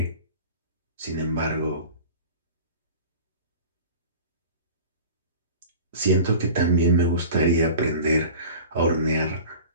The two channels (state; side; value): inverted; both; correlation -0.39